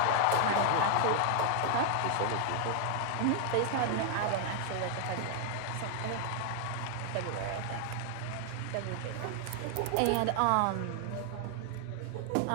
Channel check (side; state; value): both; different; correlation 0.00